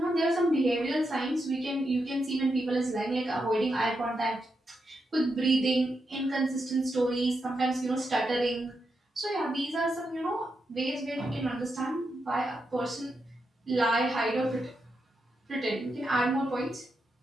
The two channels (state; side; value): normal; both; correlation 0.85